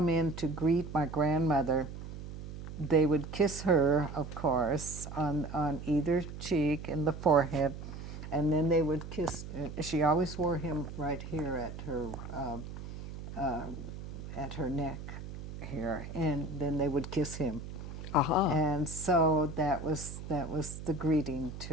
in to greet my grandmother, they would kiss her, of course, on either cheek and the forehead, and then they would kiss. She always wore him right here at her neck here, and then they would kiss him. Uh-huh. And so that was the greeting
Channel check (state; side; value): noise; right; hum, 10 dB below the sound